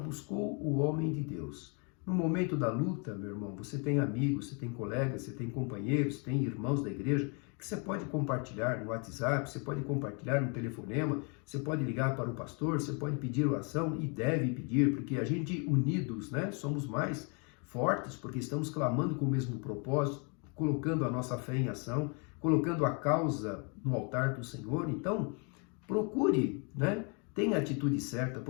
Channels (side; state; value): right; quieter; 35.6 dB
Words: o homem de Deus. No momento da luta, meu irmão, você tem amigos, você tem colegas, você tem companheiros, tem irmãos da igreja que você pode compartilhar no WhatsApp, você pode compartilhar no telefonema, você pode ligar para o pastor, você pode pedir oração e deve pedir, porque a gente unidos, né, somos mais fortes, porque estamos clamando com o mesmo propósito, colocando a nossa fé em ação, colocando a causa no altar do Senhor. Então, procure, né, tenha a atitude certa,